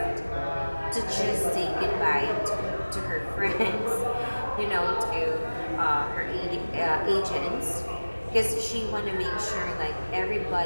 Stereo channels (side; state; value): both; inverted; correlation -1.00